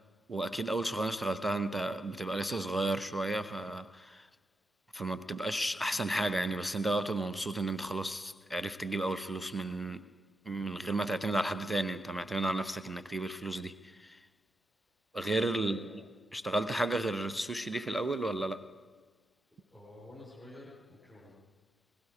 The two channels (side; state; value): both; normal; correlation 0.85